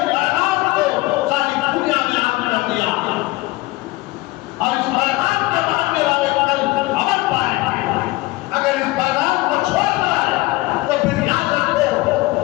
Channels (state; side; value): quieter; right; 21.0 dB